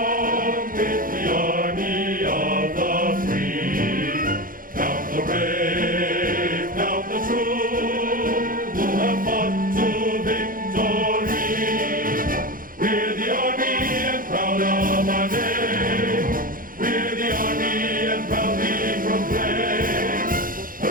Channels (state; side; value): late; left; 0.40 ms